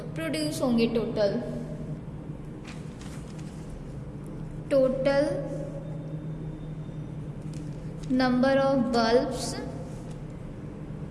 प्रोड्यूस होंगे? Total number of bulbs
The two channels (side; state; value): both; identical; correlation 1.00